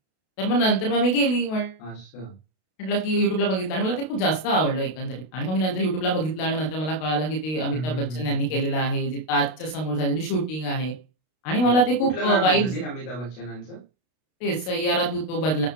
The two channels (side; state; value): right; late; 32 ms